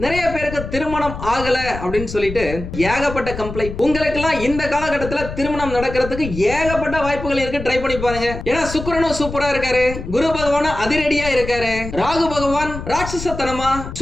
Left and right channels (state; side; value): noise; left; rumble, 9 dB below the sound